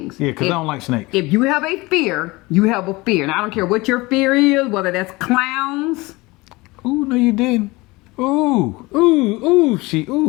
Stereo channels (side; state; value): right; quieter; 22.4 dB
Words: Yeah, because I don't like snakes. If you have a fear, you have a fear, and I don't care what your fear is, whether that's clowns. Ooh, no, you didn't.